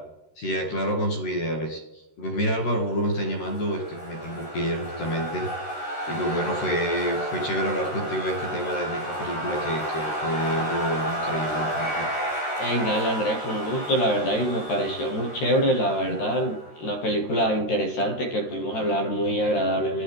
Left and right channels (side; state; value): right; late; 13 ms